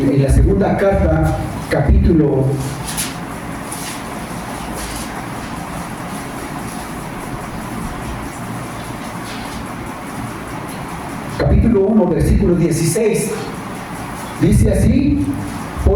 la segunda carta, capítulo 1, versículo 16, dice así:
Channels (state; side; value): identical; both; correlation 1.00